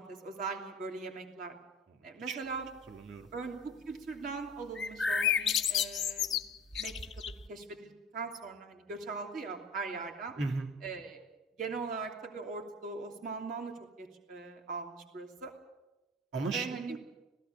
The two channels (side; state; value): both; normal; correlation 0.38